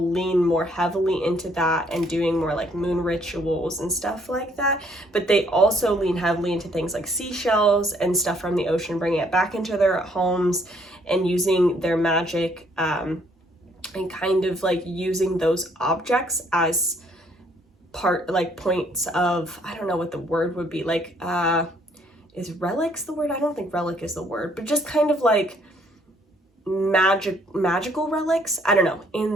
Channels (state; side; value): normal; both; correlation 0.66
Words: lean more heavily into that and doing more like moon rituals and stuff like that. But they also lean heavily into things like seashells and stuff from the ocean, bringing it back into their homes and using their magic and kind of like using those objects as points of, I don't know what the word would be, like is relics the word? I don't think relic is the word, but just kind of like magical relics, I don't know,